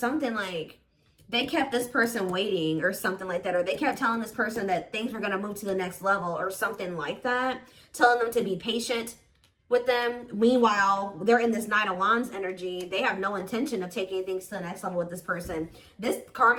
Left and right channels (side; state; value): both; identical; correlation 1.00